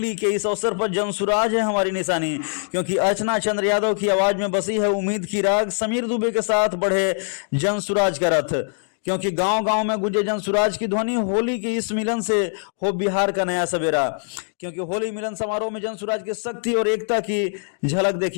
के इस अवसर पर जनसुराज है हमारी निशानी, क्योंकि अर्चना चंद्र यादव की आवाज में बसी है उम्मीद की राग। समीर दुबे के साथ बढ़े जनसुराज का रथ, क्योंकि गांव गांव में गुंजे जनसुराज की ध्वनि। होली के इस मिलन से हो बिहार का नया सवेरा, क्योंकि होली मिलन समारोह में जनसुराज की शक्ति और एकता की झलक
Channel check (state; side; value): silent; right; digital silence